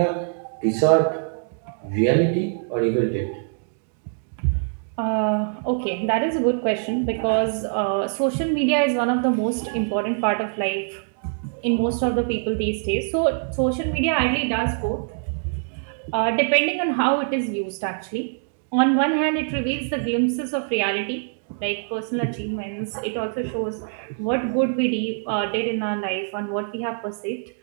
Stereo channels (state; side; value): silent; left; digital silence